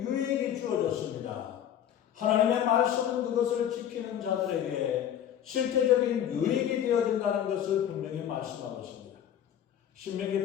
유익이 주어졌습니다. 하나님의 말씀은 그것을 지키는 자들에게 실제적인 유익이 되어진다는 것을 분명히 말씀하고 있습니다.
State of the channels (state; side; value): quieter; right; 10.0 dB